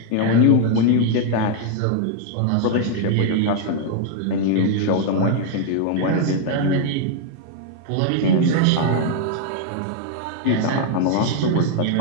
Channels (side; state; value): both; different; correlation 0.00